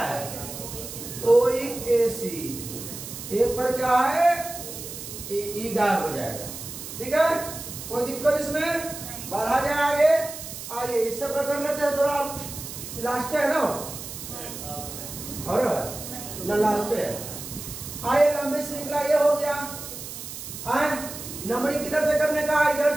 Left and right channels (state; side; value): noise; right; hiss, 10 dB below the sound